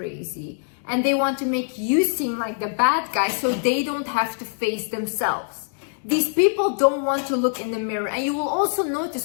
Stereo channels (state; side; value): silent; right; digital silence